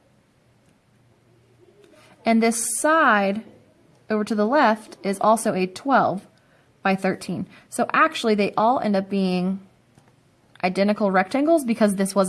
And this side over to the left is also a 12 by 13. So actually they all end up being identical rectangles because this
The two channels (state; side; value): identical; both; correlation 1.00